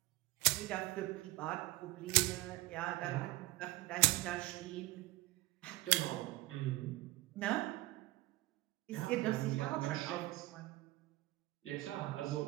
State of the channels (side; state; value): left; quieter; 19.0 dB